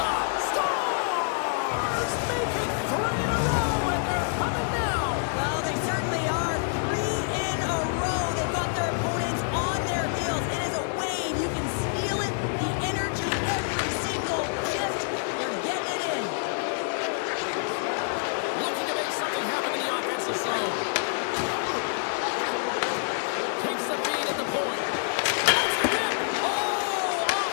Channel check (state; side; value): silent; right; digital silence